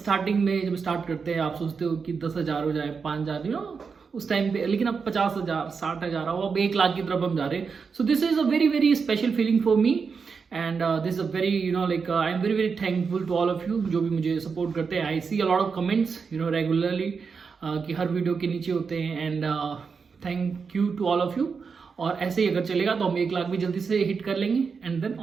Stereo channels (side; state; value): left; quieter; 5.5 dB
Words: में जब स्टार्ट करते हैं आप सोचते हो कि 10,000 हो जाए, 5,000 यू नो उस टाइम पे, लेकिन अब 50,000 60,000 हो, अब 1 लाख की तरफ हम जा रहे हैं. So this is a very very special feeling for me and this is a very you know like I am very very thankful to all of you जो भी मुझे सपोर्ट करते हैं. I see a lot of comments you know regularly कि हर video के नीचे होते हैं and thank you to all of you. और ऐसे ही अगर चलेगा तो हम 1 लाख भी जल्दी से हिट कर लेंगे एंड देन